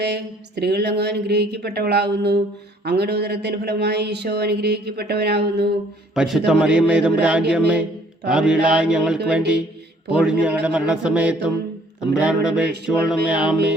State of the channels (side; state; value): both; normal; correlation 0.59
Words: സ്ത്രീകൾ അങ്ങ് അനുഗ്രഹിക്കപ്പെട്ടവളാകുന്നു. അങ്ങയുടെ ഉദരത്തിൻ ഫലമായി ഈശോ അനുഗ്രഹിക്കപ്പെട്ടവനാകുന്നു. പരിശുദ്ധ മറിയമ്മേ തമ്പുരാന്റെ അമ്മേ, പാപികളായ ഞങ്ങൾക്ക് വേണ്ടി ഇപ്പോഴും ഞങ്ങളുടെ മരണസമയത്തും തമ്പുരാനോട് അപേക്ഷിച്ചുകൊള്ളണമേ.